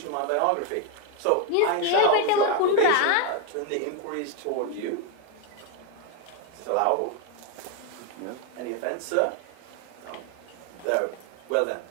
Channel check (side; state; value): both; different; correlation 0.01